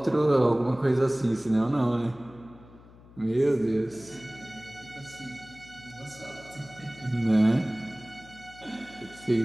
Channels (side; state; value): left; noise; hum, 22 dB below the sound